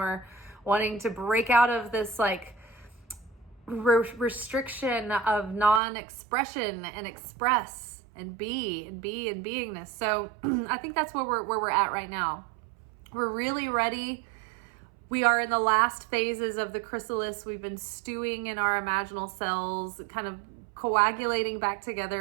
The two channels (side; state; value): left; drops out; at 5.8 s